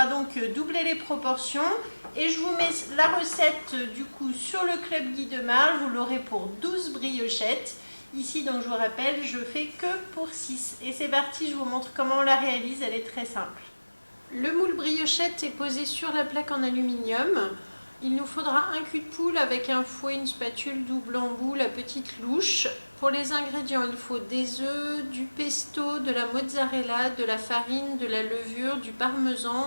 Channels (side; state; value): both; inverted; correlation -1.00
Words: donc doubler les proportions. Et je vous mets la recette du coup sur le Club Guy de Marle. Vous l'aurez pour 12 briochettes. Ici, donc je vous rappelle, je fais que pour 6. Et c'est parti, je vous montre comment on la réalise, elle est très simple. Le moule briochette est posé sur la plaque en aluminium. Il nous faudra un cul de poule avec un fouet, une spatule, double embout, la petite louche. Pour les ingrédients, il faut des œufs, du pesto, de la mozzarella, de la farine, de la levure, du